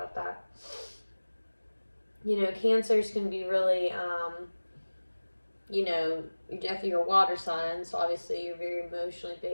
that. Cancers can be really, you're definitely your water sign, so obviously you're very emotionally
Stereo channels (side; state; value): both; inverted; correlation -1.00